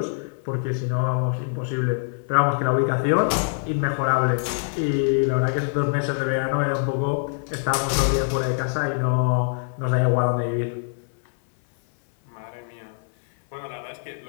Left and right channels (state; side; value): silent; right; 59 dB below the other